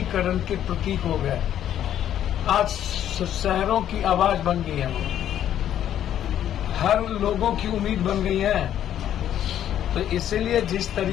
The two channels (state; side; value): quieter; right; 10.8 dB